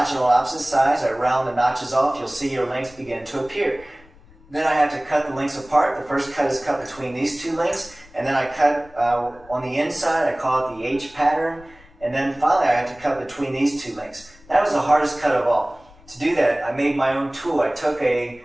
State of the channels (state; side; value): noise; left; rumble, 25 dB below the sound